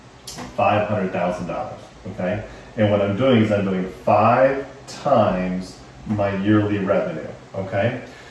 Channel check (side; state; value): both; identical; correlation 1.00